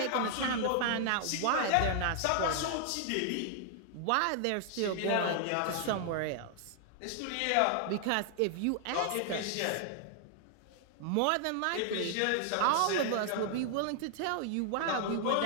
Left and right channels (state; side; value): different; both; correlation 0.00